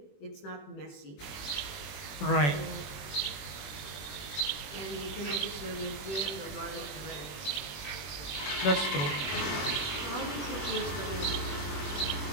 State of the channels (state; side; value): late; right; 21 ms